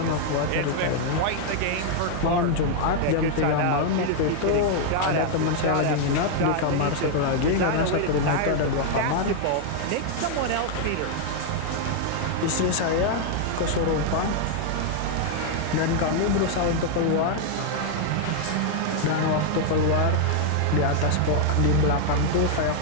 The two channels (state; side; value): different; both; correlation 0.00